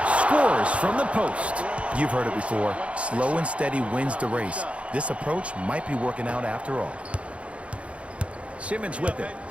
Scores from the post. You've heard it before. Slow and steady wins the race. This approach might be working out after all. Simmons with it.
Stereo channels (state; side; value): late; left; 0.062 ms